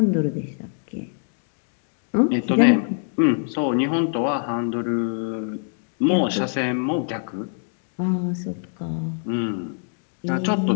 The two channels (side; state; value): right; silent; digital silence